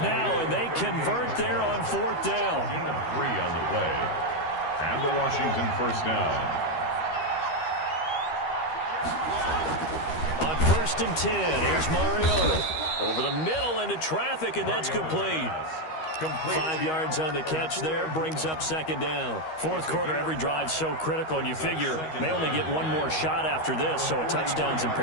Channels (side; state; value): right; late; 13 ms